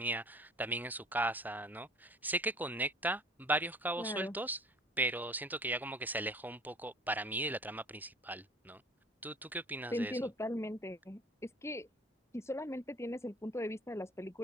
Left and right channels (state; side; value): normal; both; correlation 0.47